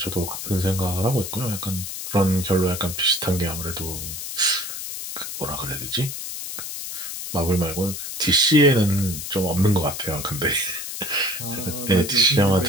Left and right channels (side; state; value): left; noise; hiss, 7 dB below the sound